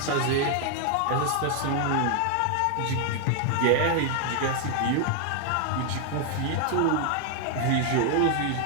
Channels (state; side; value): different; both; correlation 0.00